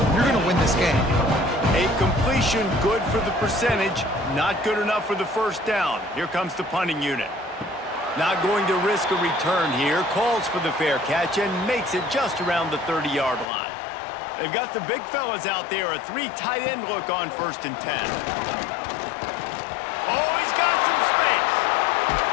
You're going to win this game. A completion good for the percentage, not good enough for the 1st down. Here comes the punting unit. Not going to risk a return here. Calls for the fair catch and makes it just around the 30-yard line. They've got the big fellas out there. A 3 tight end look on 1st and 10. Oh, he's got some space.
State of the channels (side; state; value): right; drops out; at 13.5 s